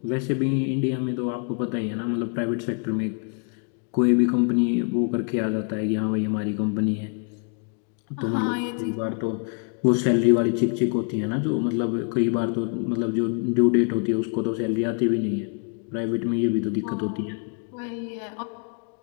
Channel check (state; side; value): quieter; right; 38.6 dB